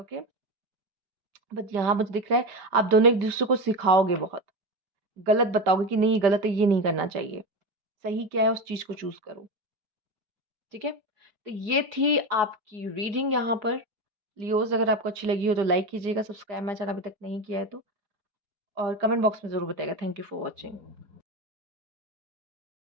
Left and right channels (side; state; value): left; late; 5.1 ms